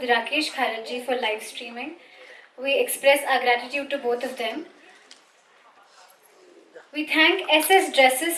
Rakesh Kharajji for live streaming. We express our gratitude to both of them. We thank SS Dresses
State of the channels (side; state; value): both; identical; correlation 1.00